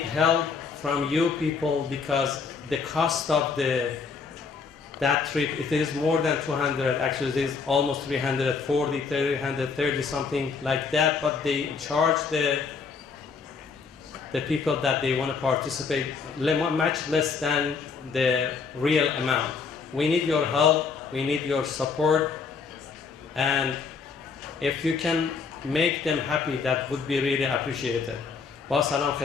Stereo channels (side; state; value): right; quieter; 5.2 dB